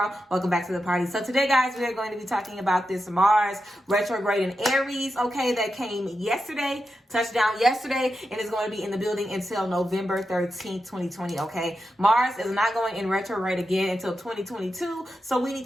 welcome back to the party. So today guys, we are going to be talking about this Mars retrograde in Aries, okay, that came yesterday, touched down yesterday, and is going to be in the building until November 13th, 2020, okay? Mars is not going in retrograde again until 2022, so we need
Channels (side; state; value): both; normal; correlation 0.89